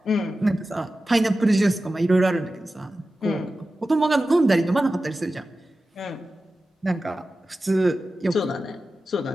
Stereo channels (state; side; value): normal; both; correlation 0.94